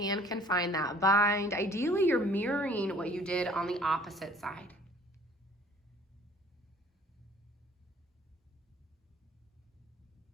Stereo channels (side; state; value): both; normal; correlation 0.53